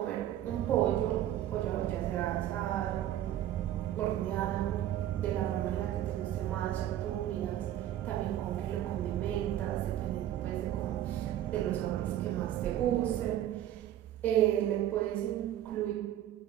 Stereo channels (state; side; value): quieter; left; 12.2 dB